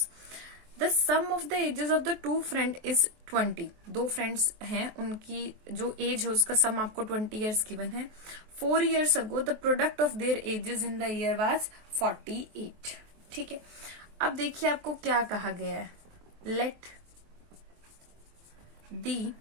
The sum of the ages of the 2 friend is 20. 2 friends हैं, उनकी जो एज है उसका सम आपको 20 years गिवन है. 4 years ago the product of their ages in the year was 48. ठीक है. अब देखिए आपको क्या कहा गया है. Let the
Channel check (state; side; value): late; left; 23 ms